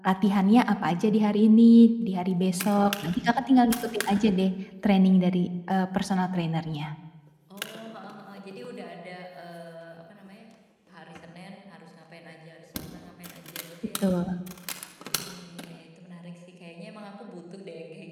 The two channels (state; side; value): identical; both; correlation 1.00